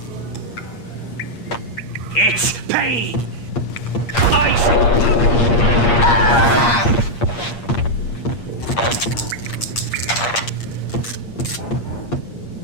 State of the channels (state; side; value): late; right; 8.5 ms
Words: It's Payne! Ice!